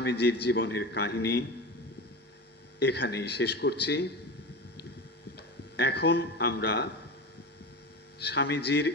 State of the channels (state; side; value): normal; both; correlation 0.27